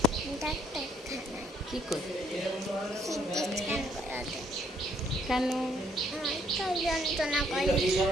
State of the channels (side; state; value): both; normal; correlation 0.67